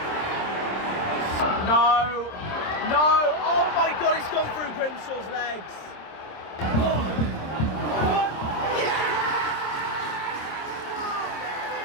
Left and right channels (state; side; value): late; right; 26 ms